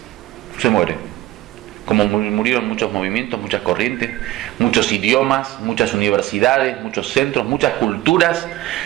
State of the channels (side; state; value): left; quieter; 16.1 dB